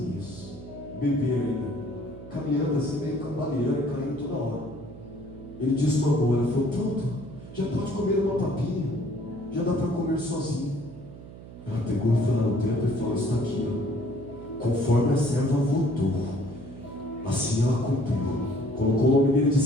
bebê ainda, caminhando assim, meio cambaleando, caindo toda hora, ele desmamou. Ela falou: pronto, já pode comer uma papinha, já dá para comer sozinho. Ela pegou e foi lá no templo e falou: está aqui, ó, conforme a serva votou, assim ela cumpriu. Colocou o nome dele de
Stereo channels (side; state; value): right; noise; hum, 15 dB below the sound